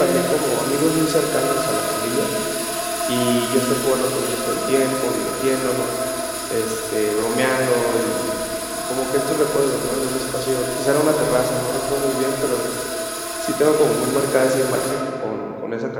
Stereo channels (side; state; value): both; identical; correlation 1.00